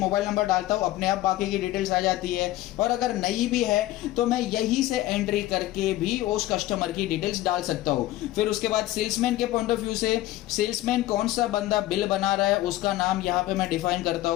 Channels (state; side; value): quieter; right; 15.8 dB